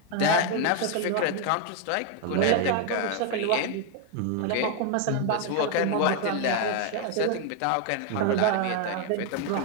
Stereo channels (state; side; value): different; both; correlation 0.01